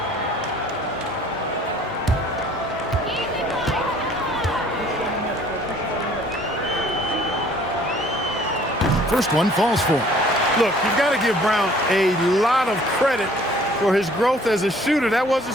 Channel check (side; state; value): both; normal; correlation 0.55